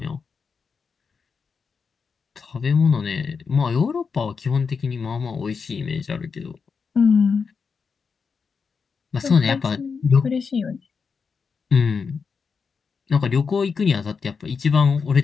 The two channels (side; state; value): right; quieter; 5.5 dB